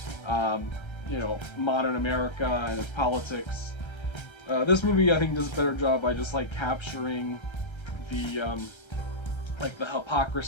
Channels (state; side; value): late; right; 1.3 ms